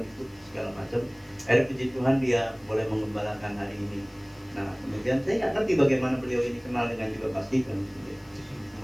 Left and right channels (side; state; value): left; noise; hiss, 29 dB below the sound